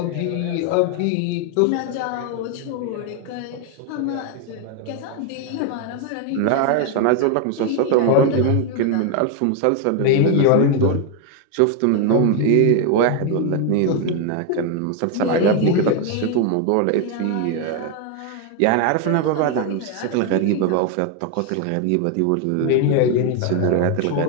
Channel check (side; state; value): both; different; correlation 0.01